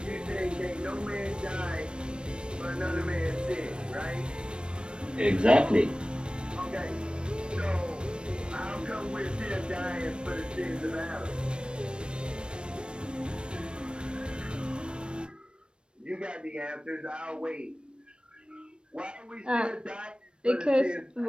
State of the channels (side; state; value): left; late; 0.055 ms